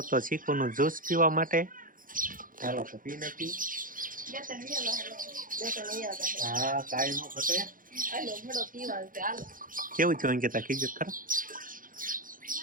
તો ચીકુનું જ્યુસ પીવા માટે ચાલો તો પી નાખી હા કાઈ નો ઘટે હાલો ભડો પીવા છે હાલો કેવું છે અંકિતા કીધું ખરા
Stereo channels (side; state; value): left; late; 0.40 ms